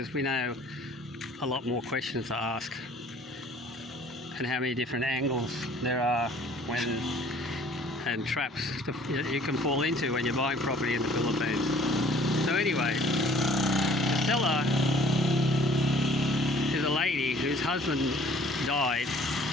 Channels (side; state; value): both; normal; correlation 0.54